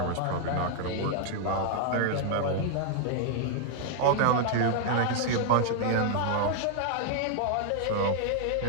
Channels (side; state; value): both; different; correlation -0.01